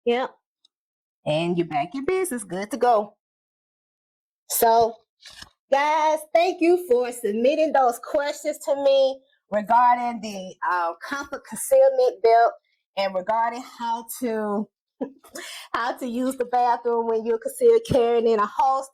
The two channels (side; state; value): both; identical; correlation 1.00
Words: Yep. And you're back in business. Good to go. So, guys, thank you for submitting those questions to me regarding the comfort concealment belt and regarding how to use the bathroom when you're concealed carrying in a